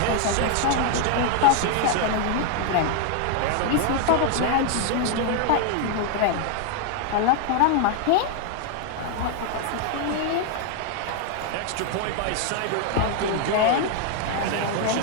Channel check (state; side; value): different; both; correlation 0.00